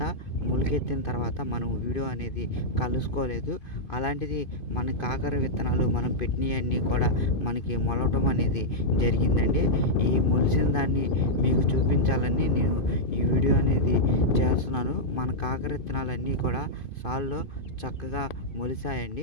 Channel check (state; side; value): late; right; 2.5 ms